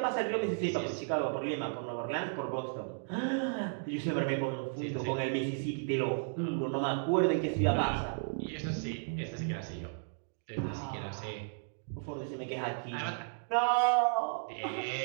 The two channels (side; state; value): left; silent; digital silence